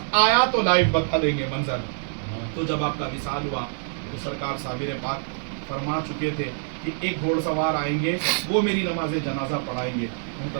آیا تو لائیو بتا دیں گے منظر۔ تو جب آپ کا وصال ہوا تو سرکار صابر پاک فرما چکے تھے کہ ایک گھوڑ سوار آئیں گے وہ میری نماز جنازہ پڑھائیں گے۔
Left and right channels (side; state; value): left; silent; 62 dB below the other